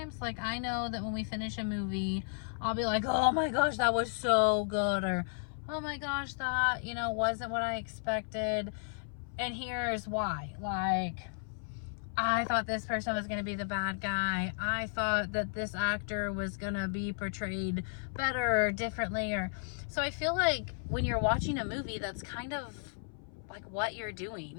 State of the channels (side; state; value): right; silent; 55 dB below the other